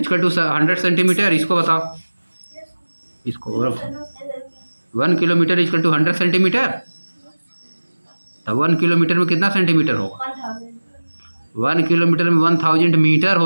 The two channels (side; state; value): both; inverted; correlation -1.00